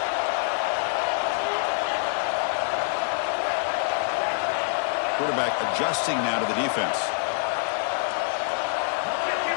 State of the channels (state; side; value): silent; right; digital silence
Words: Quarterback adjusting now to the defense.